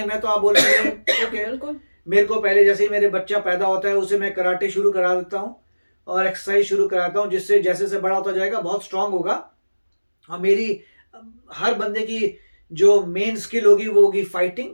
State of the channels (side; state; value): both; inverted; correlation -1.00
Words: है, तो आप बोलेंगे ओके, बिल्कुल। मेरे को पहले जैसे ही मेरे बच्चा पैदा होता है उसे मैं कराटे शुरू करा देता हूँ और एक्सरसाइज शुरू कराता हूँ, जिससे जैसे जैसे बड़ा होता जाएगा बहुत स्ट्रांग होगा। और मेरी हर बंदे की जो मेन स्किल होगी वो होगी